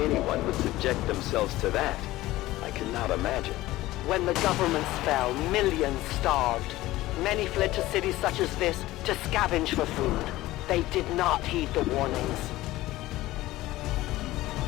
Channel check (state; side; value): quieter; right; 17.0 dB